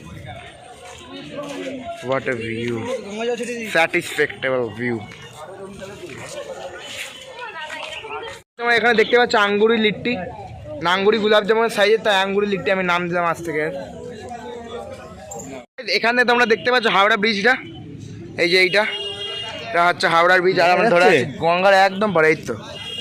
What a view, satisfactable view. তোমরা এখানে দেখতে পাচ্ছ আঙ্গুরি লিট্টি, নাঙ্গুরি গোলাপ জামুনের সাইজের, তাই আঙ্গুরি লিট্টি আমি নাম দিলাম আজ থেকে। এখানে তোমরা দেখতে পাচ্ছ হাওড়া ব্রিজটা, এই যে এইটা হচ্ছে হাওড়ার ব্রিজ। আর আমরা ধরে আছি গঙ্গার একদম পরে। এই তো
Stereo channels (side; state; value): both; identical; correlation 1.00